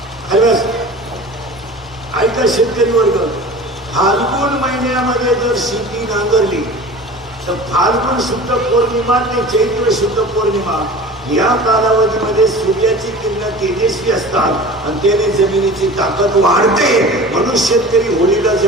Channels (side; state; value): both; normal; correlation 0.38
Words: ऐका शेतकरी वर्ग, फाल्गुन महिन्यामध्ये जर शेती नांगरली तर फाल्गुन शुद्ध पौर्णिमा ते चैत्र शुद्ध पौर्णिमा या कालावधीमध्ये सूर्याची किरण तेजस्वी असतात आणि त्याने जमिनीची ताकद वाढते. म्हणून शेतकरी होळीला